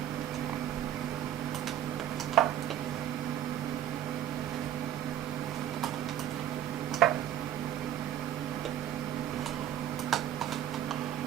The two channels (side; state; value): left; quieter; 11.2 dB